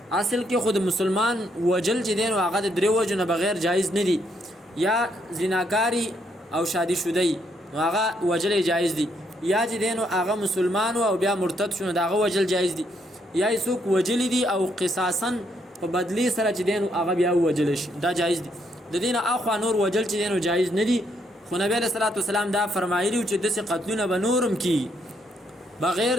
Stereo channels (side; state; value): both; normal; correlation 0.74